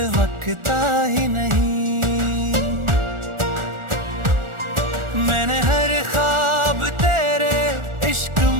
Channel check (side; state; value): left; late; 1.4 ms